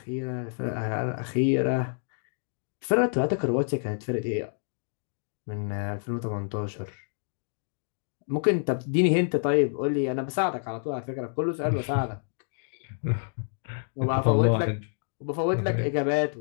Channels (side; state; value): right; silent; digital silence